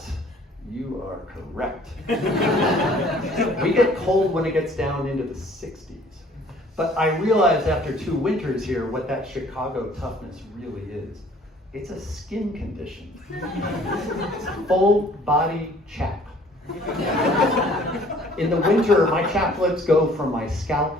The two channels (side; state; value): both; normal; correlation 0.56